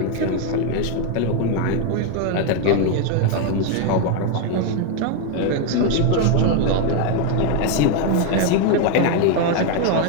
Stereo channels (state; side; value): different; both; correlation 0.01